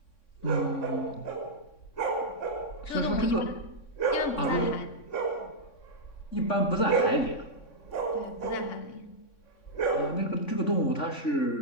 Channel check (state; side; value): late; right; 3.6 ms